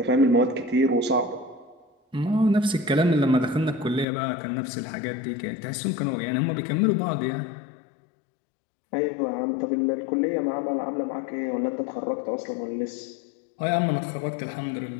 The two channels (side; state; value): right; drops out; at 4.0 s